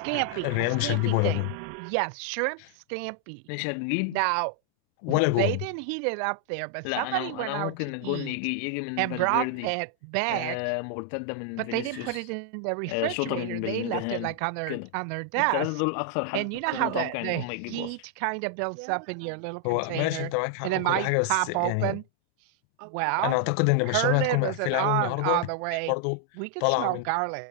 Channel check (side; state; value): both; different; correlation 0.00